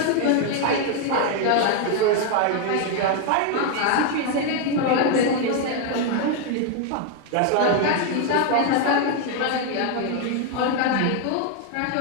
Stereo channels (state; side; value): different; both; correlation 0.01